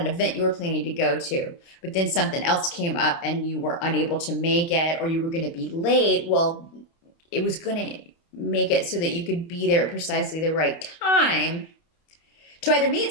an event you were planning to go to, but then something else came up and you were unable to make it, or you were going to be late. Well, it was going to make it so that you could be there at precisely the right time to either meet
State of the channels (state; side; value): late; right; 29 ms